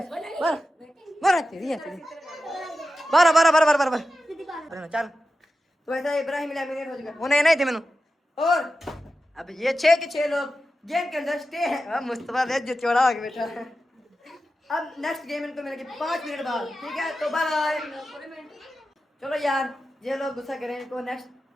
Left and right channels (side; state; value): both; normal; correlation 0.92